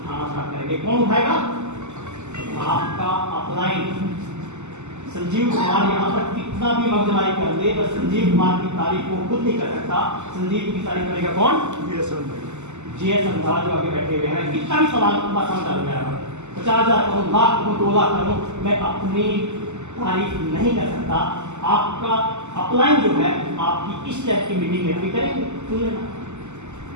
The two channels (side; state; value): left; late; 0.83 ms